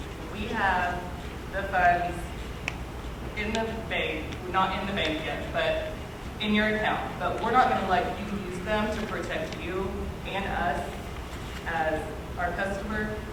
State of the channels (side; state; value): both; identical; correlation 1.00